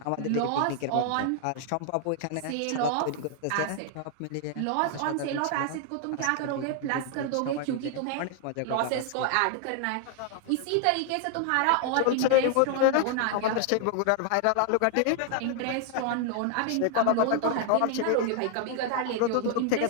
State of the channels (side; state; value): both; different; correlation 0.00